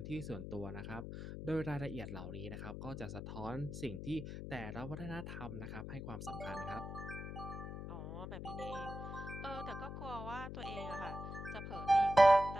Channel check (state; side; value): noise; left; hum, 7 dB below the sound